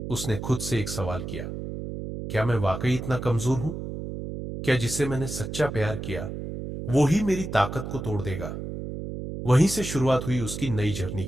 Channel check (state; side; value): noise; right; hum, 7 dB below the sound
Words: उसने खुद से एक सवाल किया, क्या मैं वाकई इतना कमजोर हूं? क्या जिसे मैंने सच्चा प्यार किया वो ही मेरी ताकत को तोड़ देगा? वहीं से शुरुआत हुई उसकी नई जर्नी